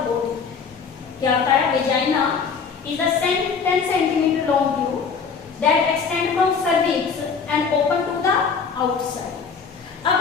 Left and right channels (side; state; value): right; quieter; 5.8 dB